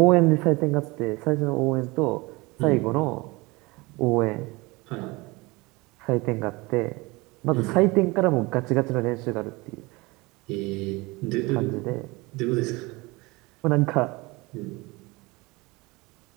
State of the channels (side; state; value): left; quieter; 23.9 dB